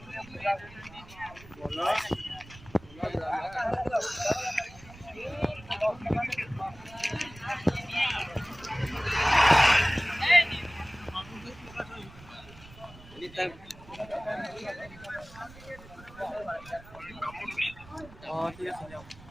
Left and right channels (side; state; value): right; noise; rumble, 20 dB below the sound